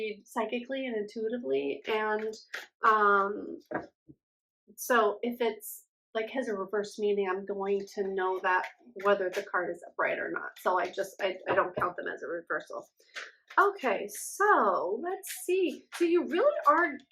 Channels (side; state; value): both; identical; correlation 1.00